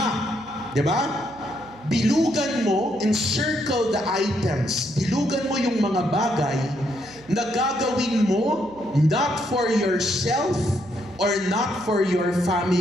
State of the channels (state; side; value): noise; right; hum, 24 dB below the sound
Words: Diba? Bilugan mo, encircle the items. Bilugan mo yung mga bagay na gagawin mo not for yourself or not for your